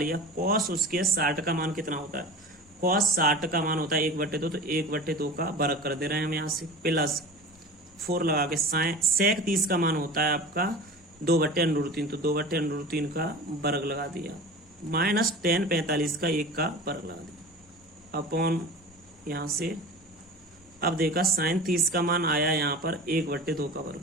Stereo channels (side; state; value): both; normal; correlation 0.35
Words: कॉस उसके 60 का मान कितना होता है, कॉस 60 का मान होता है 1/2, तो 1/2 का वर्ग कर दे रहे हैं हम यहाँ से, प्लस 4 लगा के सेक 30 का मान होता है आपका 2/√3, तो 2/√3 का वर्ग लगा दिया, माइनस tan 45 का 1 का वर्ग लगा दिया अपॉन यहाँ से। अब देखा sin 30 का मान आया यहाँ पर 1/2 का वर्ग,